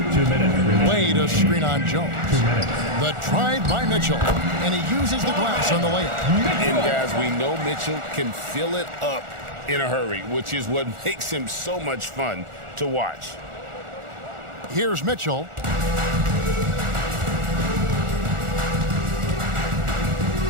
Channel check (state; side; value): late; left; 1.4 ms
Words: 2 minutes. Wade a screen on Jones. 2 minutes. The drive by Mitchell, and he uses the glass on the layup. And guys, we know Mitchell can fill it up in a hurry, which is what makes him so much fun to watch. Here's Mitchell.